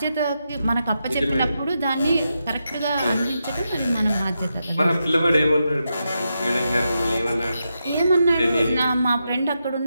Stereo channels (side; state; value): both; inverted; correlation -0.86